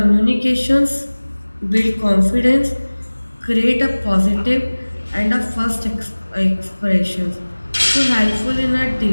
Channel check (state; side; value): inverted; both; correlation -1.00